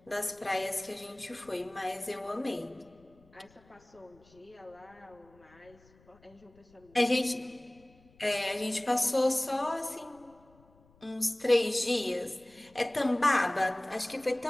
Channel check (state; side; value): noise; left; rumble, 29 dB below the sound